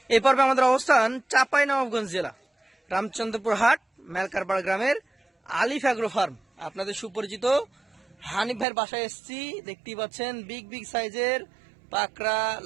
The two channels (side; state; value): left; drops out; at 8.7 s